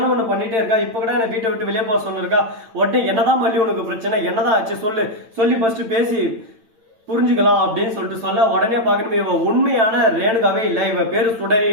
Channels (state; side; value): late; left; 8.9 ms